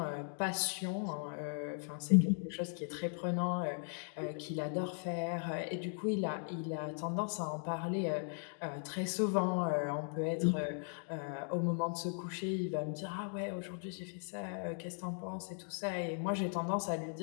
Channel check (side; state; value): right; silent; 52 dB below the other